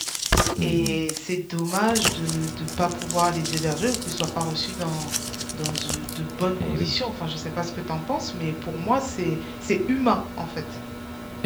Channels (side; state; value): both; identical; correlation 1.00